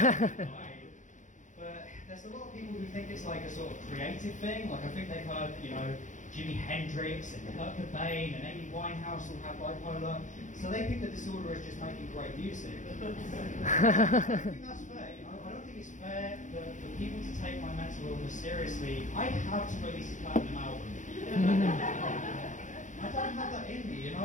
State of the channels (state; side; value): late; right; 0.36 ms